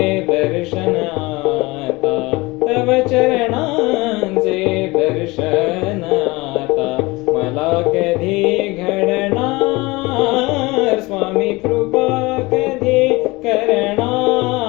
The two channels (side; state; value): right; quieter; 22.8 dB